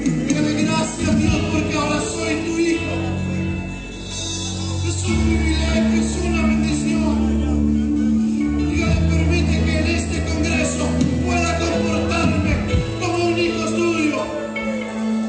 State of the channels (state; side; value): identical; both; correlation 1.00